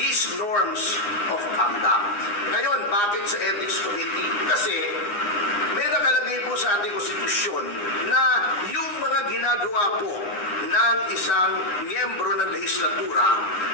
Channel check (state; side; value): late; right; 9.8 ms